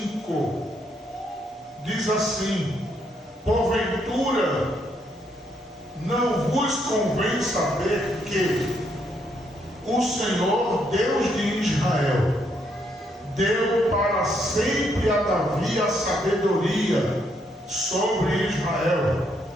diz assim: porventura não vos convém saber que o Senhor, Deus de Israel, deu para sempre a Davi a sabedoria sobre Israel,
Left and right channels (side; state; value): both; normal; correlation 0.74